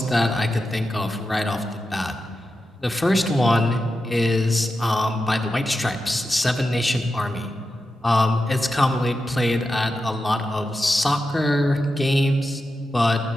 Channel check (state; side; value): normal; both; correlation 0.90